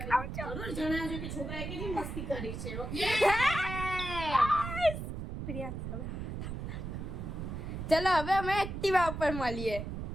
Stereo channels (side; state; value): right; noise; rumble, 6 dB below the sound